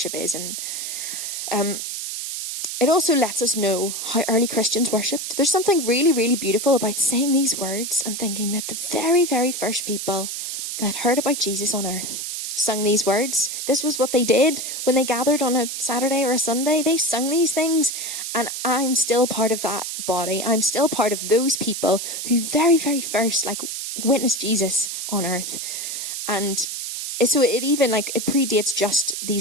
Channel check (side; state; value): right; noise; hiss, 5 dB below the sound